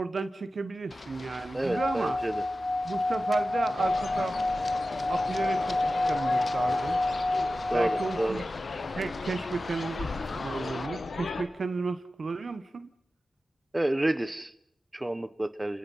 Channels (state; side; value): normal; both; correlation 0.94